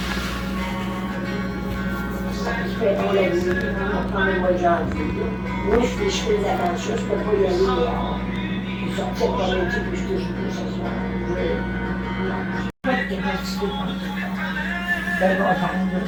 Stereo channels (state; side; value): identical; both; correlation 1.00